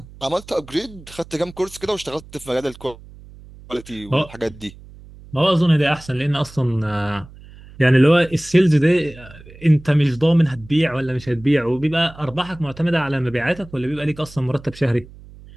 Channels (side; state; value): right; noise; hum, 20 dB below the sound